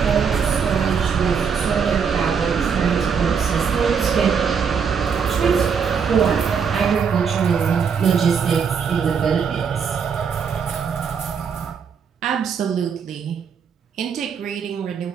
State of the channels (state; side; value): quieter; left; 6.5 dB